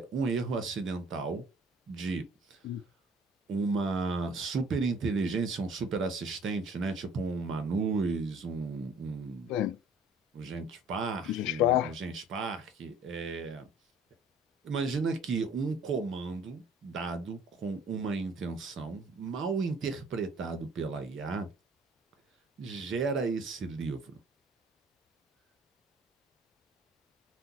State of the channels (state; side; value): normal; both; correlation 0.52